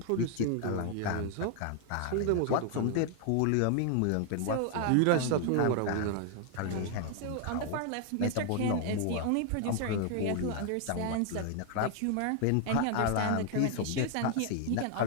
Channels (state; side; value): different; both; correlation 0.00